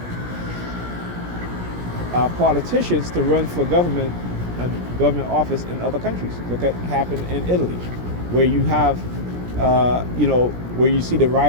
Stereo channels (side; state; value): left; late; 17 ms